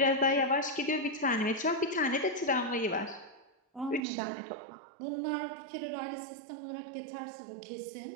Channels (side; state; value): left; drops out; at 4.0 s